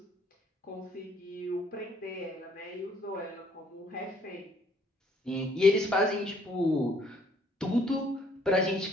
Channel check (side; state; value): both; normal; correlation 0.64